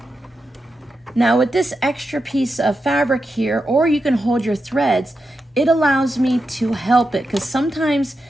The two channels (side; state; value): both; normal; correlation 0.88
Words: Now with this extra piece of fabric here, or you can hold your threads, it allows me to help it because sometimes